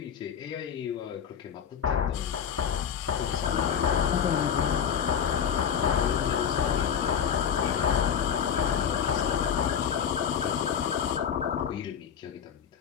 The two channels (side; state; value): right; quieter; 7.8 dB